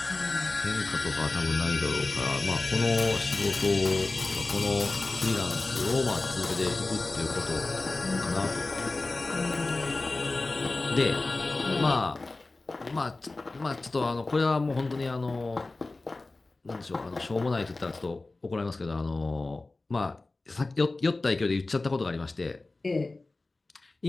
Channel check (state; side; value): quieter; right; 3.3 dB